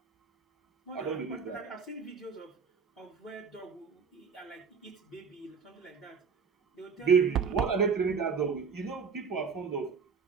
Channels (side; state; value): left; quieter; 5.9 dB